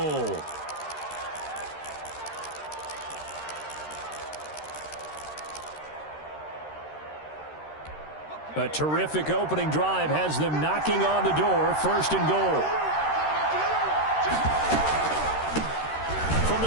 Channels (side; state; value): right; late; 13 ms